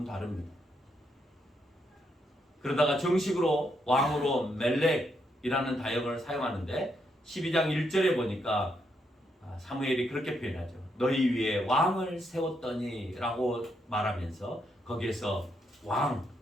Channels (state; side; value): normal; both; correlation 0.78